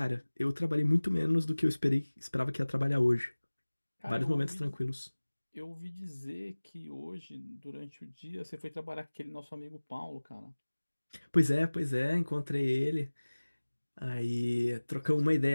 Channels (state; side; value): inverted; both; correlation -1.00